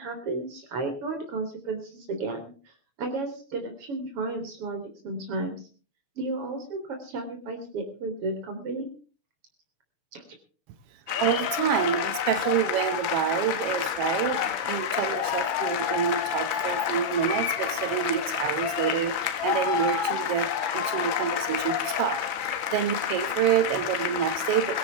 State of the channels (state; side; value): late; left; 7.4 ms